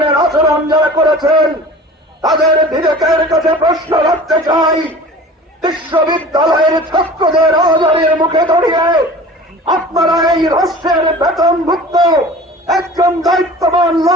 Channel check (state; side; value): normal; both; correlation 0.41